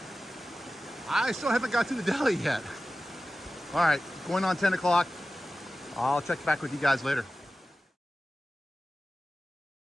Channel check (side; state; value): both; normal; correlation 0.95